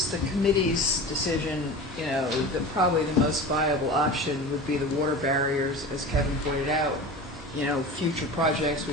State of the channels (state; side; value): normal; both; correlation 0.33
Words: the committee's decision, that probably the most viable option would be the water barriers, as Kevin pointed out. Future projects,